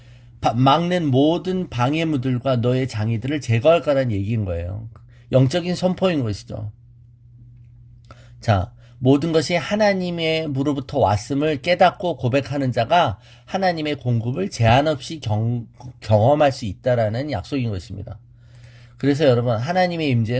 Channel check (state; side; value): identical; both; correlation 1.00